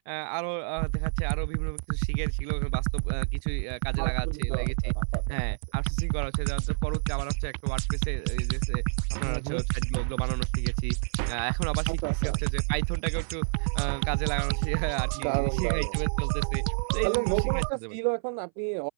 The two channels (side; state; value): left; silent; 58 dB below the other